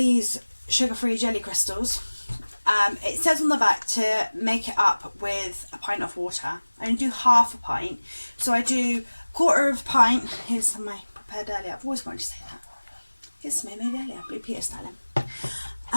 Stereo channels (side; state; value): both; inverted; correlation -1.00